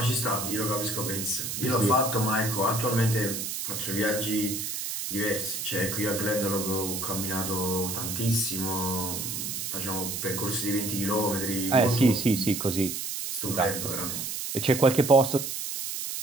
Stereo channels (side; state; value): right; noise; hiss, 4 dB below the sound